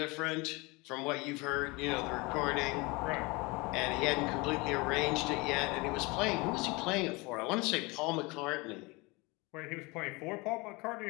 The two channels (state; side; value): quieter; right; 25.5 dB